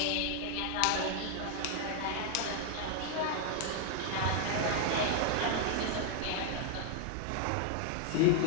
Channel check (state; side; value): different; both; correlation 0.00